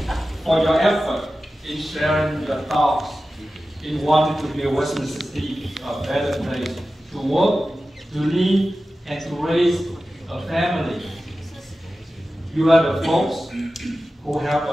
for your effort in sharing your thoughts in wanting to make Westminster City a better place to work, to live, and to raise a family. You are the folks who help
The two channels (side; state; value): both; normal; correlation 0.94